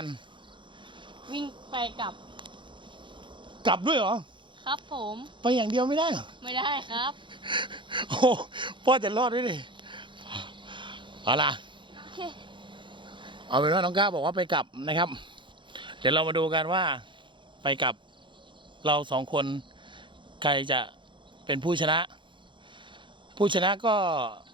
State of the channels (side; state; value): left; late; 0.23 ms